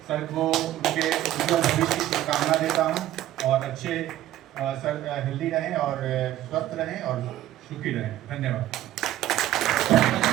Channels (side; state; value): left; quieter; 13.5 dB